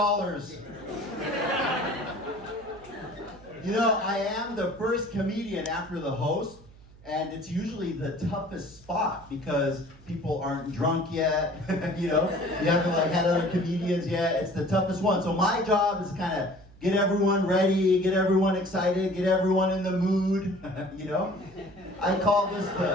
You know, I am the first comedian after the host, and it's usually the toughest spot because people aren't drunk yet. You know, you haven't like had other comedians yet. It's the toughest one. So my job is kind of get everyone ready, get everyone excited, get everyone in the mood. You know, I call this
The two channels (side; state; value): right; noise; hum, 23 dB below the sound